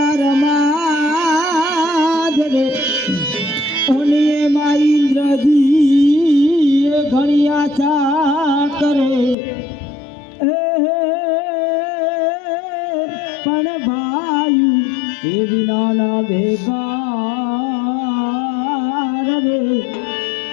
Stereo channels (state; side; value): drops out; right; at 9.3 s